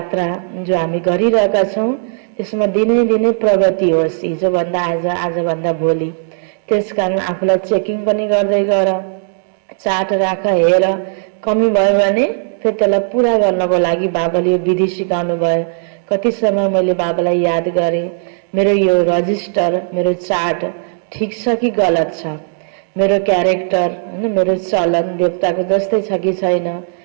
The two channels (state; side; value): silent; left; digital silence